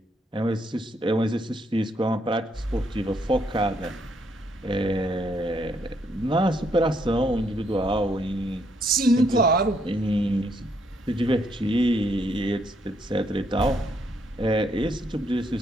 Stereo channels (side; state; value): both; normal; correlation 0.73